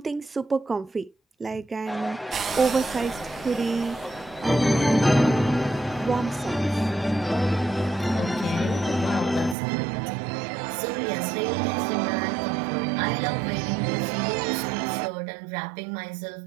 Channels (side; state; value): left; drops out; at 9.6 s